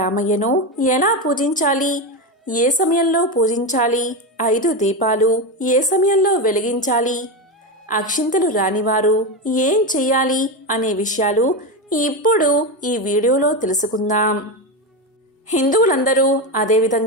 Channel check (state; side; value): normal; both; correlation 0.14